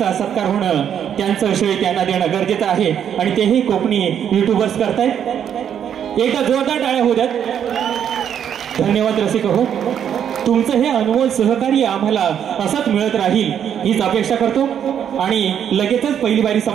सत्कार होणं त्यांचं श्रेय त्यांना देणं गरजेचं आहे आणि तेही कोकणी युट्यूबर्स करतायत एकदा जोरदार टाळ्या होऊ द्यात धन्यवाद रसिक हो तुमचं हे अनमोल सहकार्य आम्हाला असंच मिळत राहील हीच अपेक्षा करतो आणि लगेचच पहिली बारी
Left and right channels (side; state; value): left; quieter; 8.9 dB